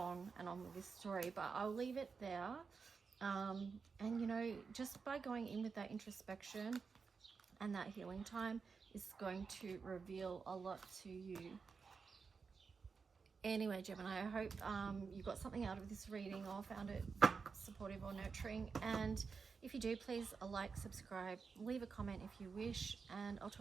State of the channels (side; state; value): left; quieter; 5.2 dB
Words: and on with this story, but I'll leave it there. And, you know, just by going in with that introspection and that healing time is going to reveal a lot to you. Anyway, Gemini, I hope you got something out of this reading or found it supportive or nurturing. And if you do, please like, subscribe, leave a comment if you wish, and I'll